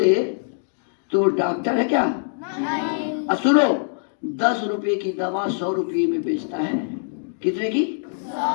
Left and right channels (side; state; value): right; silent; digital silence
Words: तो डॉक्टर है क्या? नहीं। सुनो, 10 रुपए की दवा 100 रुपये में बेचता है। कितने की?